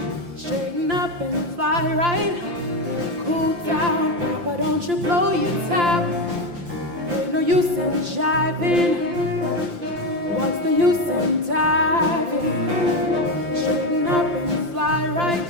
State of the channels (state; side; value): late; left; 5.8 ms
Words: Straighten up and fly right. Cool down, Papa, don't you blow your top. Ain't no use in jiving. What's the use in diving? Straighten up and fly right.